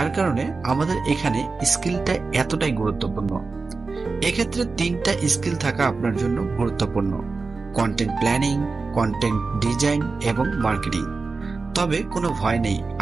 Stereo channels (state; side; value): quieter; left; 4.1 dB